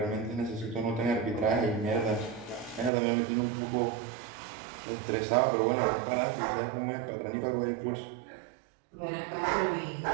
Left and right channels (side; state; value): left; drops out; at 2.9 s